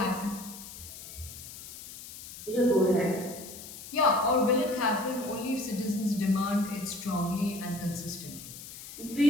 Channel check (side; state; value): left; noise; hiss, 13 dB below the sound